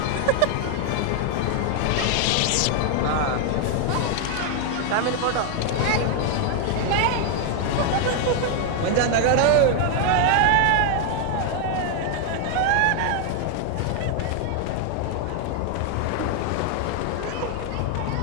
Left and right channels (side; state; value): both; different; correlation 0.00